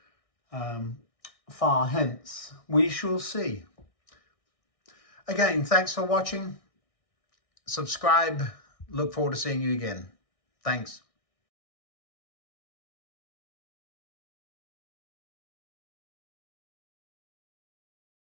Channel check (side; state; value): right; late; 1.6 ms